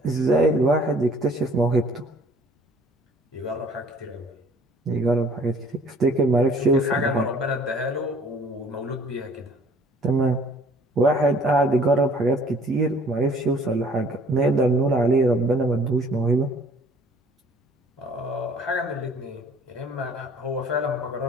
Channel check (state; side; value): normal; both; correlation 0.55